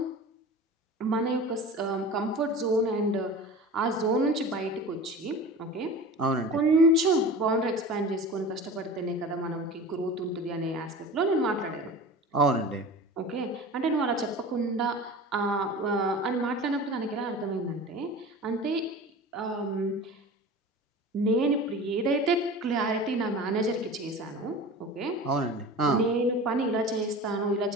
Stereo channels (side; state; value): both; normal; correlation 0.35